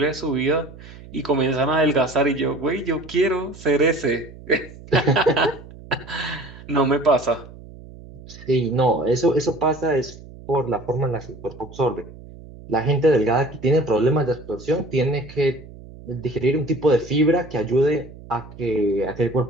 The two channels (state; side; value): noise; right; hum, 18 dB below the sound